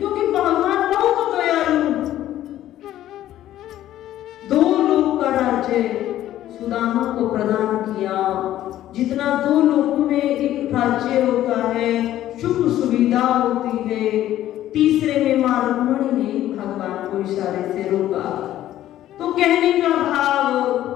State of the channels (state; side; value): quieter; right; 13.0 dB